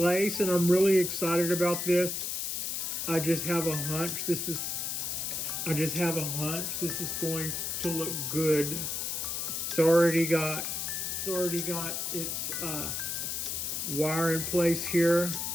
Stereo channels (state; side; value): noise; left; hiss, 2 dB below the sound